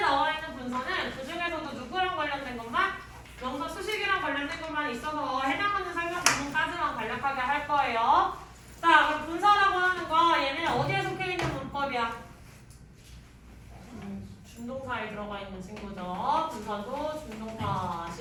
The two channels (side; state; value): both; identical; correlation 1.00